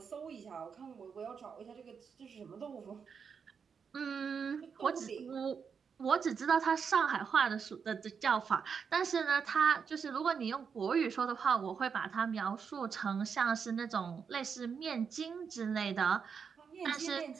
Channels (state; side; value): quieter; left; 6.3 dB